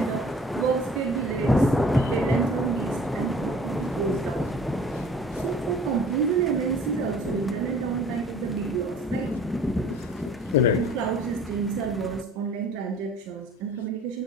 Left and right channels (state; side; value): normal; both; correlation 0.49